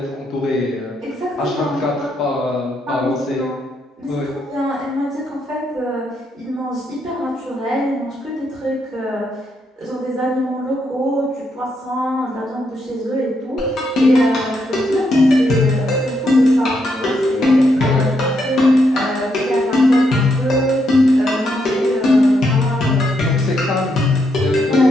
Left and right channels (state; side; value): normal; both; correlation 0.78